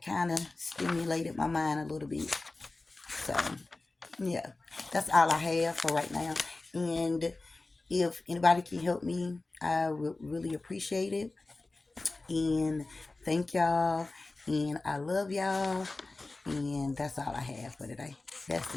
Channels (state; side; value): quieter; right; 3.3 dB